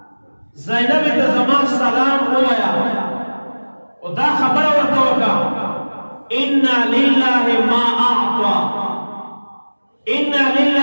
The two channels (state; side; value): inverted; both; correlation -1.00